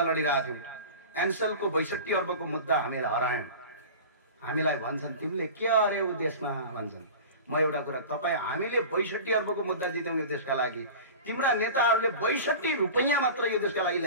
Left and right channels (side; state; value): both; inverted; correlation -0.35